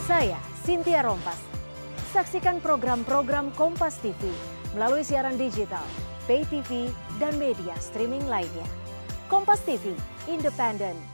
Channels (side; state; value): both; inverted; correlation -1.00